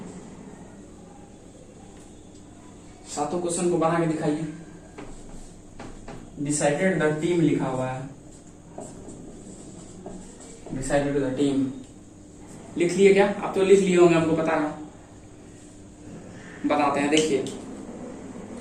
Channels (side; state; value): both; identical; correlation 1.00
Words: सातों क्वेश्चन को बना के दिखाइए। डिसाइडेड द टीम लिखा हुआ है, डिसाइडेड द टीम लिख लिए क्या? आप तो लिख लिए होंगे, हमको पता है। बताते हैं, देखिए